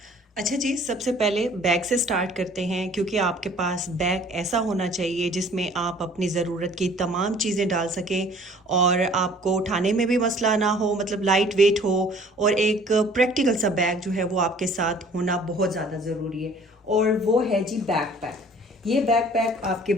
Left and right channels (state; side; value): normal; both; correlation 0.53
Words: अच्छा जी, सबसे पहले बैग से स्टार्ट करते हैं क्योंकि आपके पास बैग ऐसा होना चाहिए जिसमें आप अपनी ज़रूरत की तमाम चीज़ें डाल सकें और आपको उठाने में भी मसला ना हो, मतलब लाइट वेट हो। और एक प्रैक्टिकल सा बैग जो है वो आपके साथ होना बहुत ज़्यादा ज़रूरी है और वो है जी बैकपैक। ये बैकपैक आपके